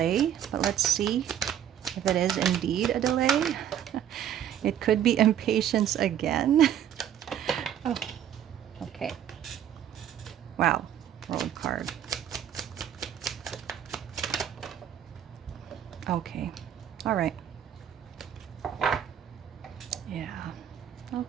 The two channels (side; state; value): left; quieter; 9.9 dB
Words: but let's see if it is indeed a delay. It could be impatience again. Oh, okay. Wow, rolled card. Okay, all right. Yeah,